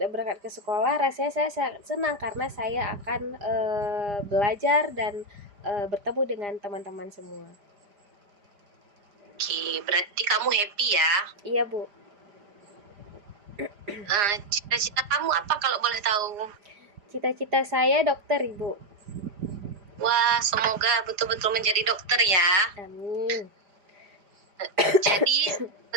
ke sekolah, rasanya saya sangat senang karena saya akan belajar dan bertemu dengan teman-teman semua. Oke, berarti kamu happy ya? Iya Bu. Cita-cita kamu apa kalau boleh tahu? Cita-cita saya dokter Ibu. Wah, semoga betul-betul menjadi dokter ya. Amin. Jadi,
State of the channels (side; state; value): left; late; 4.9 ms